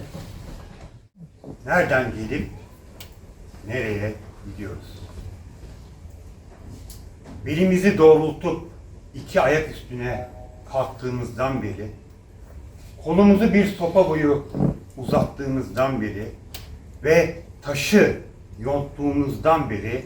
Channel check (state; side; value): identical; both; correlation 1.00